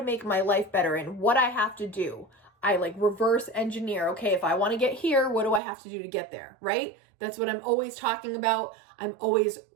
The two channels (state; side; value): drops out; left; at 5.6 s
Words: make my life better and what I have to do. I like reverse engineer. Okay, if I want to get here, what do I have to do to get there, right? That's what I'm always talking about. I'm always